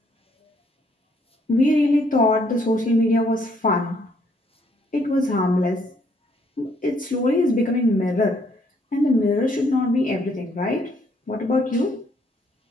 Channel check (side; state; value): both; normal; correlation 0.68